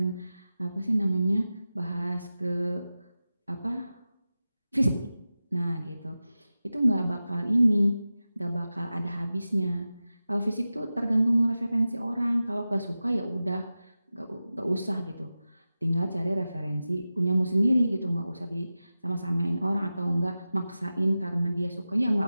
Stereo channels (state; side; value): inverted; both; correlation -0.94